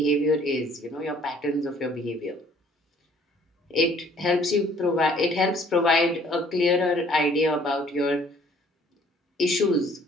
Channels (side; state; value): both; normal; correlation 0.58